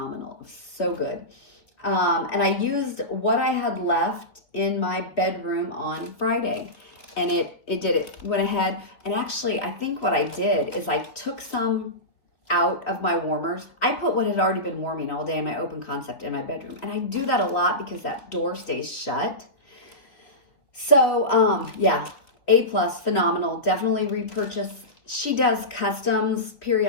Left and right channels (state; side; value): late; right; 3.3 ms